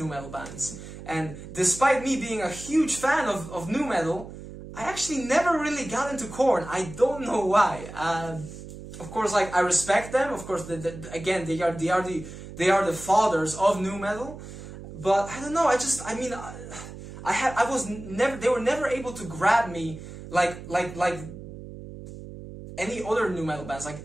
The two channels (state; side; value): noise; right; hum, 13 dB below the sound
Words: metal bands. And despite me being a huge fan of nu metal, I actually never really got into Korn. I don't know why. Of course, like, I respect them. Of course, again, they are the fathers of nu metal. But I don't know. They were never able to grab me like any other nu metal bands. Like